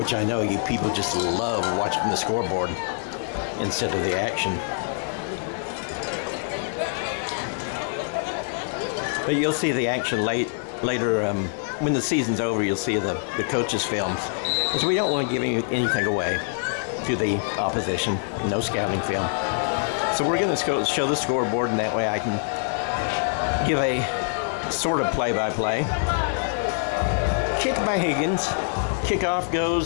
I know you people just love watching the scoreboard instead of the action. But you'll see the action later. When the season's over, you'll see the coaches' films, because we don't want to give anything away to the opposition. No scouting film. So we're going to show the scoreboard, and that way I can give a sort of play-by-play. Kick by Higgins. Kickoff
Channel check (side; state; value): right; silent; digital silence